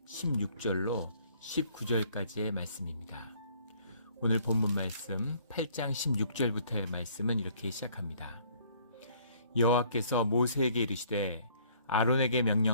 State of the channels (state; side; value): inverted; both; correlation -0.61